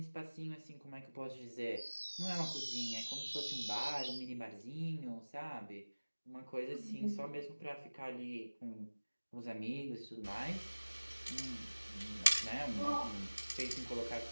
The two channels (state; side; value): inverted; both; correlation -1.00